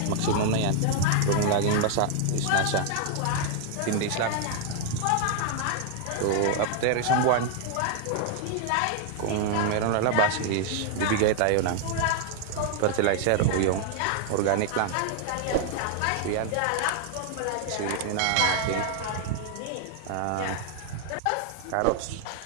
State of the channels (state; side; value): different; both; correlation 0.00